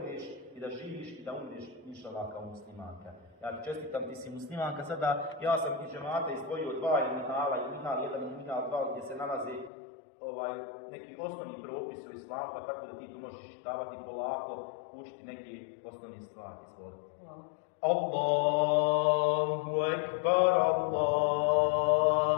i da živiš i da umreš inšallah kao muslimanka. Ja ti čestitam, ti si muslimanka. Sada ja sam iz džemata izdvojio dva minhala, minhal 1 i minhal 2 gdje se nalaze neki osnovni propis u islamu, pa tako da ti tu možeš čitavati polako, učiti neke osnovne stvari. Hvala. Allahu ekbar,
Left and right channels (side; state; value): right; drops out; at 9.7 s